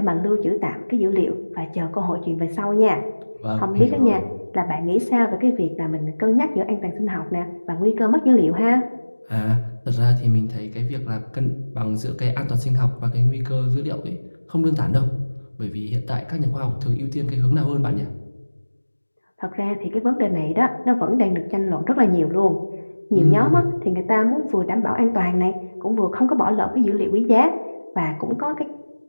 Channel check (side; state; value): both; inverted; correlation -1.00